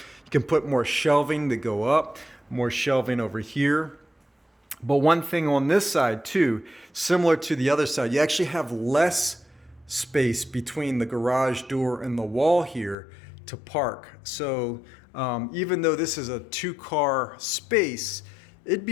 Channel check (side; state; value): right; drops out; at 13.0 s